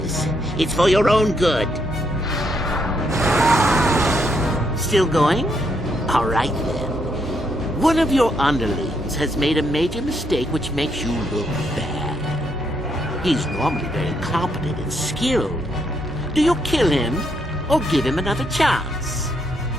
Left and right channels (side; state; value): both; normal; correlation 0.76